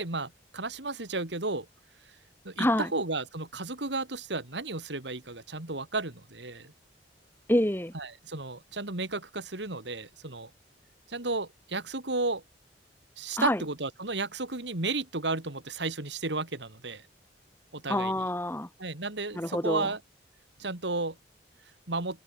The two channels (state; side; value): normal; both; correlation 0.20